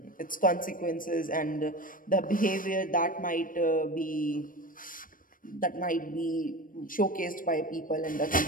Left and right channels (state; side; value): late; right; 0.40 ms